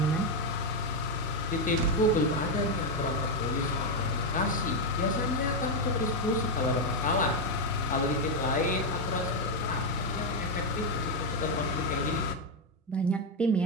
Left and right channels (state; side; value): normal; both; correlation 0.05